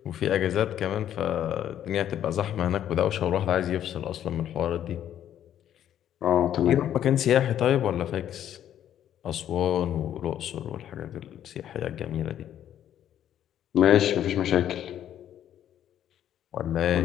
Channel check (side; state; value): right; quieter; 10.7 dB